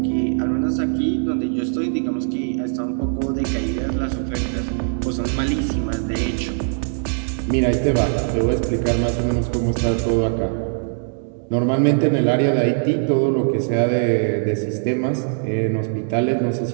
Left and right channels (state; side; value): silent; left; digital silence